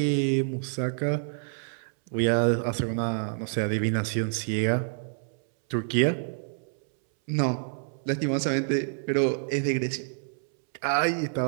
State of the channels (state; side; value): silent; left; 60 dB below the other